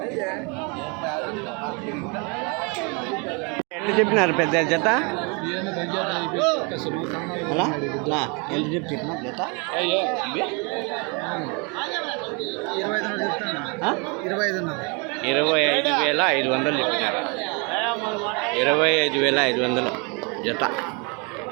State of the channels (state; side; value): quieter; left; 32.2 dB